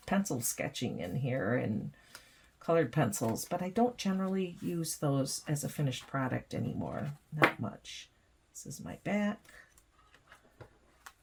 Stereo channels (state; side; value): identical; both; correlation 1.00